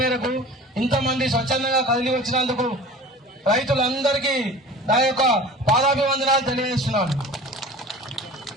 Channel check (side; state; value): both; normal; correlation 0.40